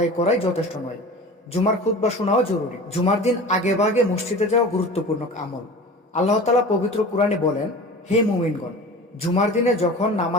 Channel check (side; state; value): both; normal; correlation 0.37